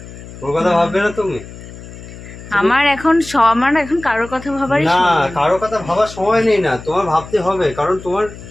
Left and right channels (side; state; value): left; noise; hum, 15 dB below the sound